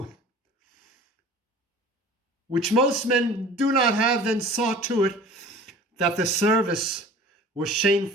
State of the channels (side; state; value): both; normal; correlation 0.44